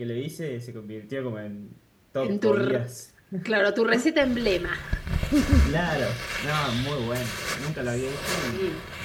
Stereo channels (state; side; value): identical; both; correlation 1.00